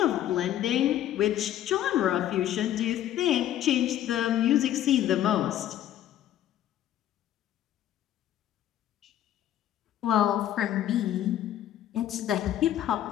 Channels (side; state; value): right; quieter; 11.9 dB